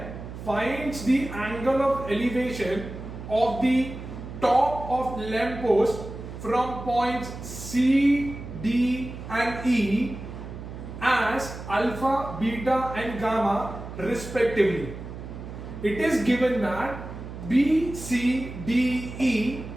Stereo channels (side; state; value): right; noise; hum, 11 dB below the sound